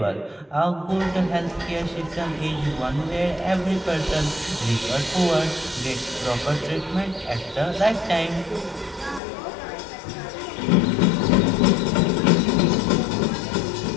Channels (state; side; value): drops out; right; at 9.2 s